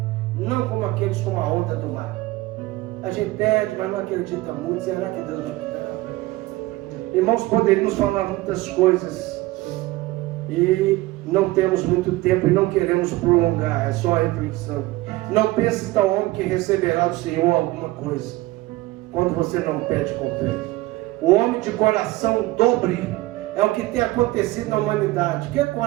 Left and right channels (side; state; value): left; quieter; 18.9 dB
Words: não como aqueles com a onda do mar. A gente pede, mas não acredita muito. Será que Deus vai dar? Irmãos, poderíamos falar muitas coisas e não temos muito tempo e não queremos prolongar. É só a reflexão. Não pense tal homem que receberá do Senhor alguma coisa, quando você não pede com fé. O homem de coração dobre é o que tem acontecido na humanidade. O que é